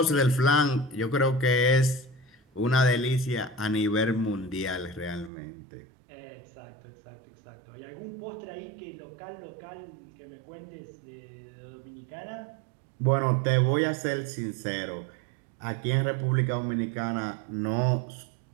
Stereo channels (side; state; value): left; drops out; at 5.3 s